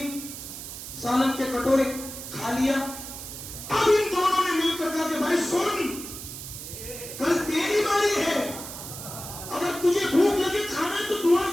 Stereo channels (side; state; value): right; noise; hiss, 10 dB below the sound